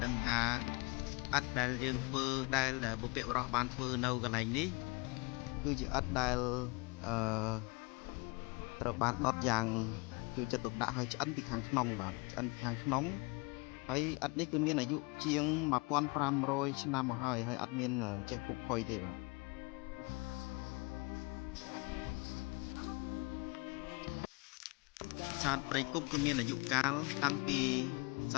ដឹងថាឥដ្ឋដែលយើងធ្វើដែលបុព្វបុរសបានធ្វើនៅកន្លែងនេះគឺជាឥដ្ឋដែលត្រូវបានដុតយ៉ាងជួយចិត្តទុកដាក់ឲ្យឆ្អិនពីខាងក្នុងបាទឆ្អិនខាងក្នុងហើយឥដ្ឋនេះគឺមានអាយុជាង1500ឆ្នាំមកហើយអត់មានចេះពុកផុយទេបាទប្រាសាទព្រៃគុកគឺមានអាយុកាលតាំងពី ស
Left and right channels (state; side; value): quieter; right; 28.2 dB